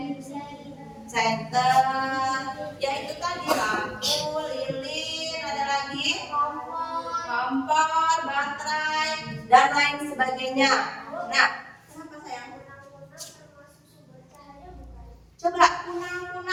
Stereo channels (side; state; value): both; identical; correlation 1.00